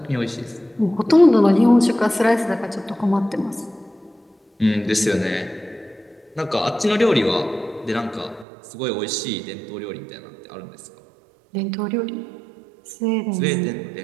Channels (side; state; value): left; drops out; at 8.5 s